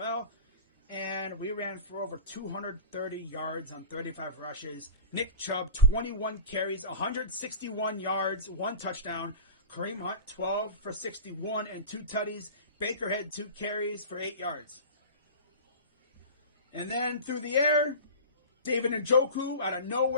And we ran for over 230 yards on 35 rushes. Nick Chubb, 21 carries, 161 yards, 1 touchdown. Kareem Hunt, 12 for 61 and 2 tutties. Baker had 2 carries for 8 yards. And then through the air, David Njoku, out of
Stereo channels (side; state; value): both; inverted; correlation -0.34